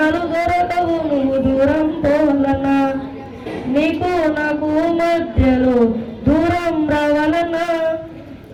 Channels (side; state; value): both; identical; correlation 1.00